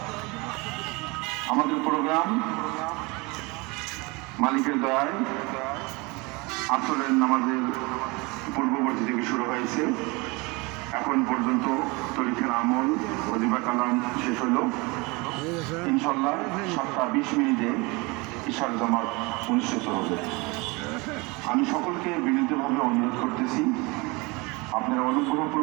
আমাদের প্রোগ্রাম মালিকের দয়ায় আসরের নামাজের পূর্ববর্তী থেকে শুরু হয়েছে। এখন পর্যন্ত তরিকার আমল ওজিফা কালাম শেষ হইল। ইনশাল্লাহ 7:20 ইশার জামাত অনুষ্ঠিত হবে। আমি সকলকে বিনীতভাবে অনুরোধ করতেছি, আপনারা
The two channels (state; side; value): quieter; left; 26.2 dB